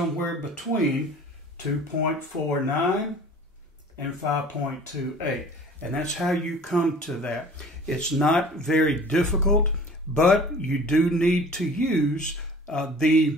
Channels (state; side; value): normal; both; correlation 0.46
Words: between 2.49 and 5.28. And that's how you come to that. It's not very difficult, but you do need to use